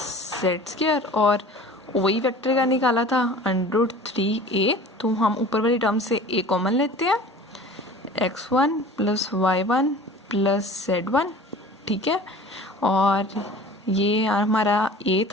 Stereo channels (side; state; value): both; normal; correlation 0.42